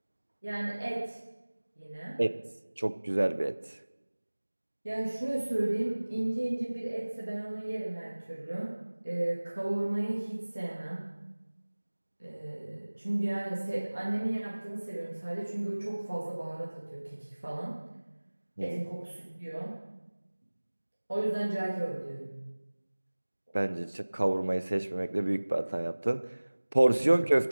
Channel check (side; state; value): both; inverted; correlation -1.00